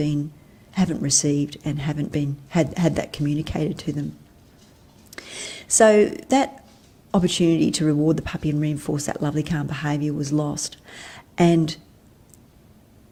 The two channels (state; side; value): identical; both; correlation 1.00